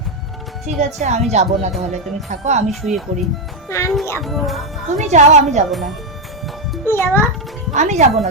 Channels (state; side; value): normal; both; correlation 0.05